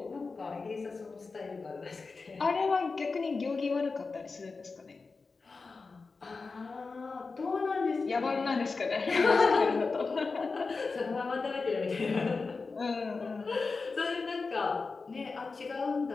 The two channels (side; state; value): right; quieter; 4.3 dB